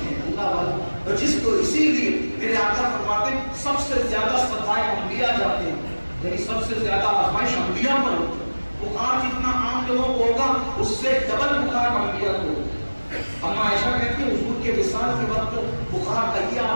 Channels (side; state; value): both; inverted; correlation -1.00